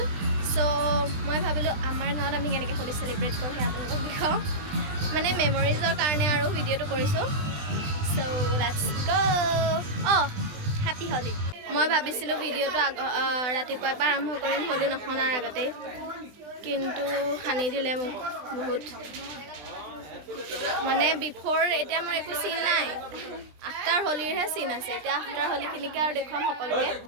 সো মই ভাবিলোঁ আমাৰ গাঁৱত আমি কেনেকৈ হোলি চেলিব্ৰেট কৰোঁ সেই আপোনালোকক দেখাওঁ মানে মেমৰিজৰ কাৰণে আৰু ভিডিঅ'টো কৰিছোঁ so let's go happy Holi মই ভাবিছিলোঁ ভিডিঅ'টো ৰাতিপুৱাৰ পৰা আৰম্ভ কৰিম হোলি নখনাৰ আগতেই কিন্তু সানি দিলে মোক বহুত মানে বিফৰ এতিয়া মোৰ একো চিন নাই আফটাৰ হোলিৰহে চিন আছে এতিয়া আফটাৰ হোলিখিনিকে আৰু দেখুৱাম সকলোকে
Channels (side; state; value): left; late; 20 ms